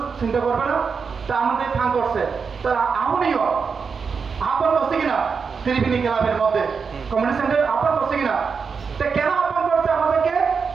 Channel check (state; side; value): quieter; left; 5.6 dB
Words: চিন্তা করবে না, তা আমাদের ফান করছে, তারা আমনিও আহ্বান করছে কিনা? ত্রিবেণী ক্লাবের মধ্যে কমিউনিটি সেন্টার আহ্বান করছে কিনা? তা কেন আহ্বান করছে আমাদেরকে?